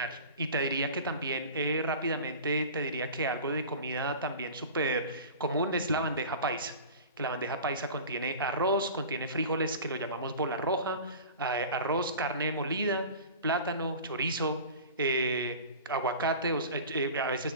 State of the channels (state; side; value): inverted; both; correlation -0.37